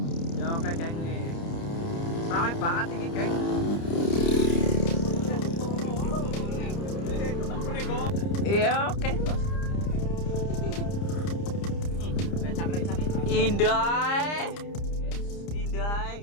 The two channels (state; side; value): late; right; 30 ms